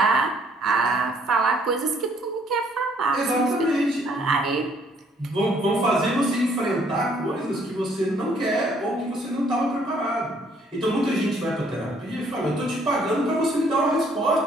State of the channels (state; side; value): normal; both; correlation 0.64